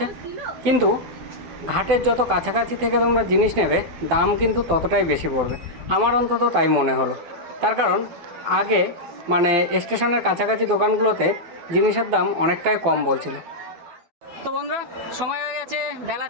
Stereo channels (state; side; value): late; left; 12 ms